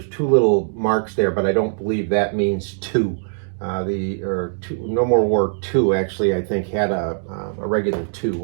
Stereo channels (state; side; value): silent; left; digital silence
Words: two little marks there, but I don't believe that means two. No More War 2 actually, I think, had a regular 2,